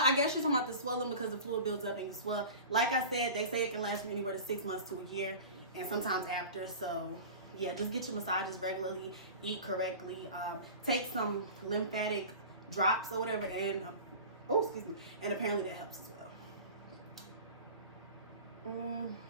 I guess you're talking about the swelling, because the fluid builds up and you swell. Like I said, they say it can last from anywhere to 6 months to a year, and sometimes after. So yeah, just get your massages regularly, eat correctly, take some lymphatic drops or whatever, and oh, excuse me, and apparently that helps as well.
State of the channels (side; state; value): both; inverted; correlation -0.36